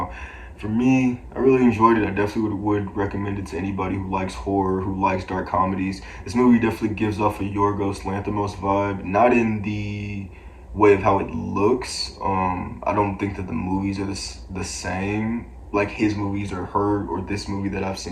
for me, I really enjoyed it. I definitely would recommend it to anybody who likes horror, who likes dark comedies. This movie definitely gives off a Yorgos Lanthimos vibe, not in the way of how it looks. I don't think that the movies are the same, like his movies or her or this movie that I've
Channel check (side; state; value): both; identical; correlation 1.00